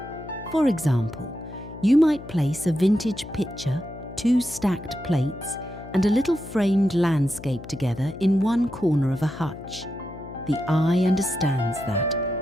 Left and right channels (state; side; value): noise; left; hum, 14 dB below the sound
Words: For example, you might place a vintage pitcher, 2 stacked plates, and a little framed landscape together in one corner of a hutch. The eye understands that